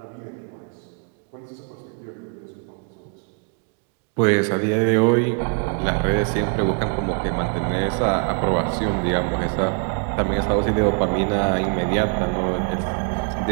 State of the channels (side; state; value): left; quieter; 38.3 dB